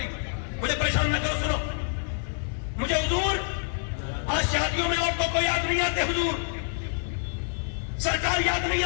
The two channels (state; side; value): silent; right; digital silence